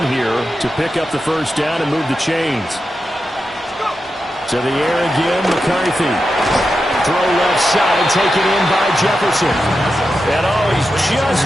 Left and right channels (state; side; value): normal; both; correlation 0.89